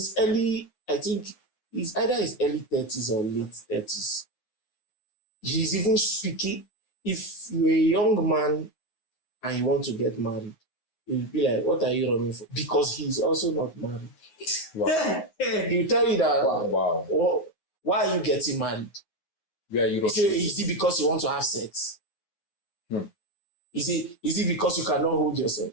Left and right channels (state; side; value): late; right; 9.4 ms